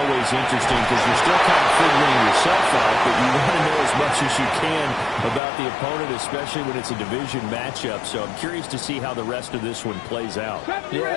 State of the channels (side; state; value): right; drops out; at 5.4 s